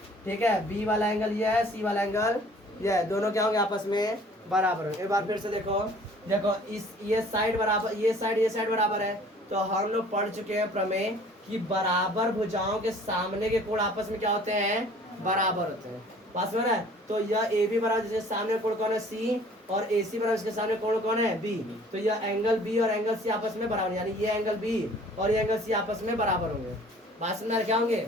ठीक है। B वाला एंगल ये है, C वाला एंगल ये है, दोनों क्या होंगे, आपस में बराबर होंगे। एक बार फिर से देखो, इस ये साइड बराबर, ये साइड बराबर है। तो हम लोग पढ़ चुके हैं प्रमेय कि बराबर भुजाओं के सामने के कोण आपस में क्या होते हैं, बराबर होते हैं। पास में है। तो यह AB बराबर, जिसके सामने कोण कौन है, C, और AC बराबर इसके सामने कोण कौन है, B। तो यह एंगल B और एंगल C आपस में बराबर, यानी ये एंगल B और ये एंगल C आपस में बराबर होंगे। बात में क्या होंगे,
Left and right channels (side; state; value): both; normal; correlation 0.52